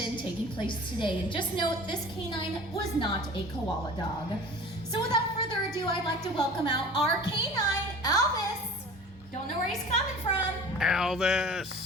taking place today. And just note, this canine was not a koala dog. So without further ado, I'd like to welcome out our canine, Elvis. Don't know where he's coming from.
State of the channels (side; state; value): both; normal; correlation 0.41